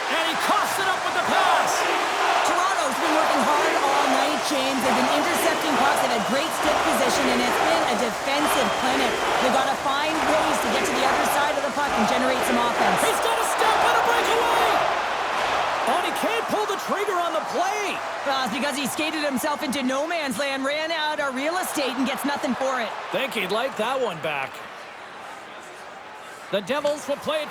And he coughs it up with the pass. Toronto's been working hard all night, James. They've been intercepting pucks at a great stick position, and it's been a defensive clinic. They've got to find ways to get to the other side of the puck and generate some offense. He's got a step and a breakaway. Oh, he can't pull the trigger on the play. It's because he skated himself into no man's land, ran out of real estate, and gets nothing for it. Think he'd like that one back. The Devils will play it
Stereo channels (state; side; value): identical; both; correlation 1.00